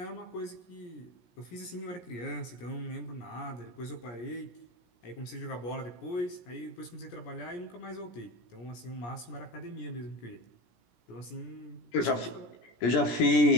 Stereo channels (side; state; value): right; late; 17 ms